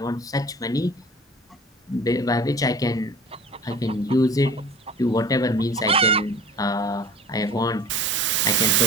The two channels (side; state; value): both; normal; correlation 0.41